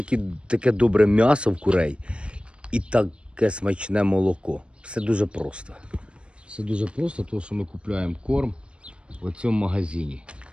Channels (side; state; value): left; late; 0.057 ms